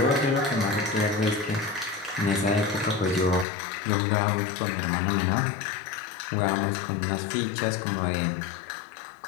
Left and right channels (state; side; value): drops out; right; at 3.5 s